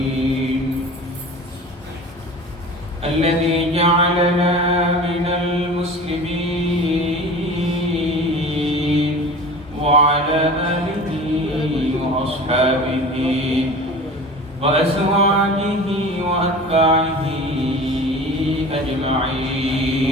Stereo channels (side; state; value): both; normal; correlation 0.38